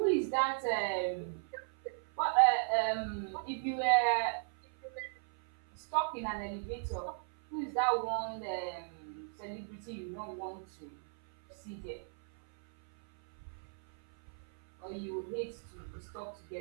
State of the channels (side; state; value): left; silent; 54 dB below the other